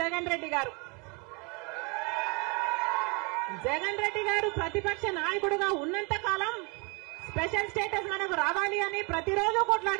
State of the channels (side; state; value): left; quieter; 31.4 dB